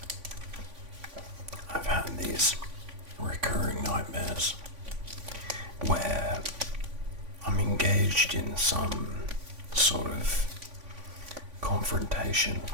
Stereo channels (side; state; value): left; late; 3.5 ms